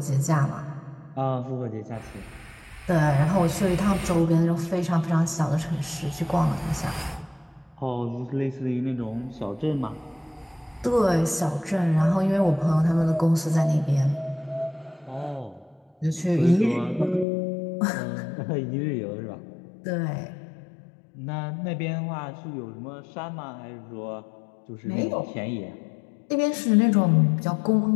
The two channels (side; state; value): right; drops out; at 17.2 s